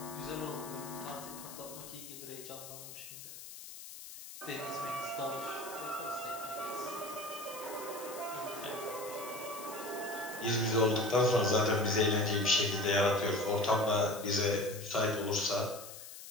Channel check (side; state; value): left; noise; hiss, 13 dB below the sound